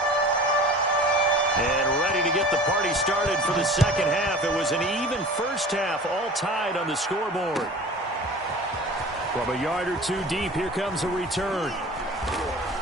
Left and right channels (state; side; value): normal; both; correlation 0.40